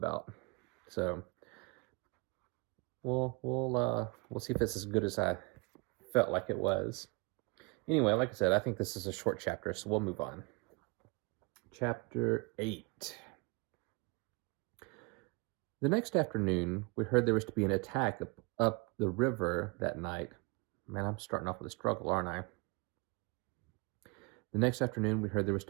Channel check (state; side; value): quieter; left; 29.5 dB